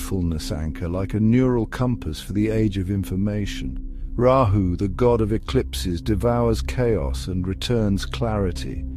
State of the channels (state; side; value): identical; both; correlation 1.00